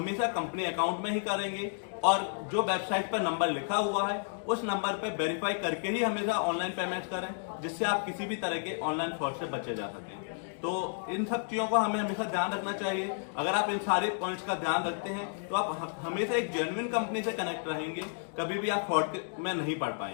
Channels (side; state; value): right; silent; digital silence